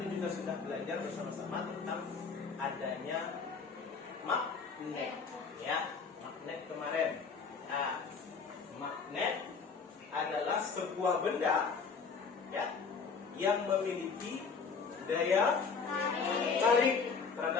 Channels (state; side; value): quieter; right; 5.3 dB